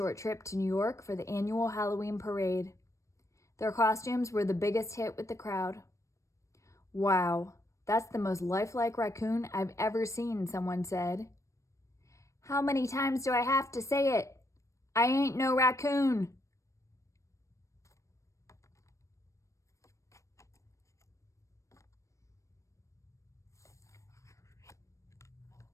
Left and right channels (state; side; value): late; right; 0.15 ms